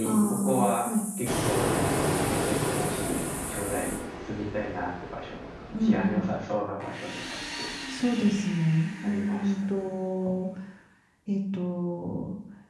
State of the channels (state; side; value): identical; both; correlation 1.00